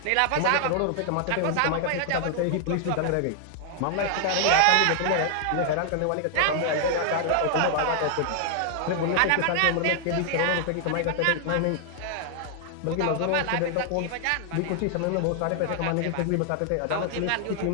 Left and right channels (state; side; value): different; both; correlation 0.00